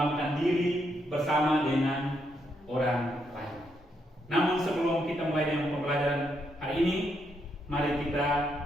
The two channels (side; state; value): both; normal; correlation 0.78